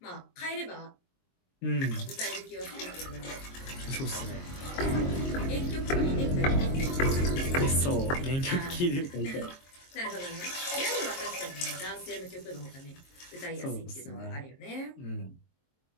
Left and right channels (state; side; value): late; right; 22 ms